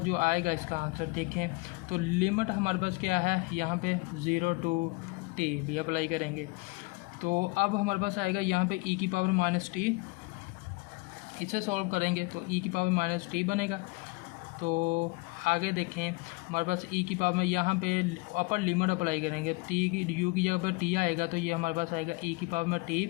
जो आएगा इसका आंसर देखें, तो लिमिट हमारे पास क्या है, यहाँ पे 0 to t भी अप्लाई करेंगे, तो अब हमारे पास आएगा यहाँ पे e की पावर माइनस टी, इसे सॉल्व करेंगे तो e की पावर माइनस टी बनेगा, तो आगे देखें हमारे पास ई की पावर में यहाँ पे अपर लिमिट अप्लाई करेंगे, टी की यू की जगह पर टी आएगा तो ये हमारे पास आएगा ई की पावर में टी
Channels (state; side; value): quieter; right; 26.2 dB